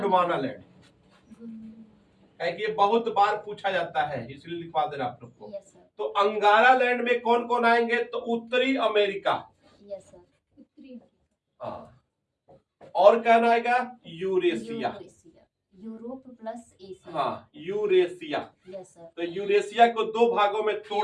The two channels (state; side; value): identical; both; correlation 1.00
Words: लैंड। है कि ये बहुत बार पूछा जाता है, इसलिए लिखवा देना आप लोग को। Yes sir. तो अंगारा लैंड में कौन कौन आएंगे? तो उत्तरी अमेरिका। Yes sir. उत्तरी हाँ। और क्या आएगा? Eurasia. Eurasia. Europe plus Asia. हाँ, यूरेशिया। Yes sir. तो यूरेशिया को दो भागों में